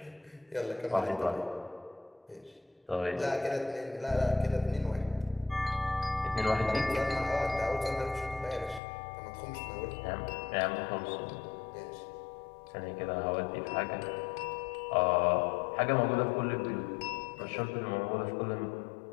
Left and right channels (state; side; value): drops out; right; at 8.8 s